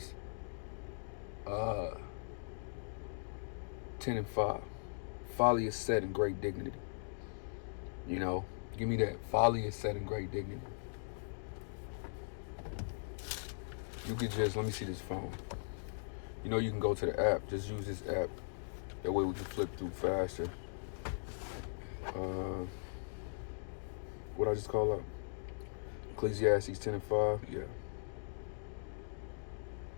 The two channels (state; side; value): silent; right; digital silence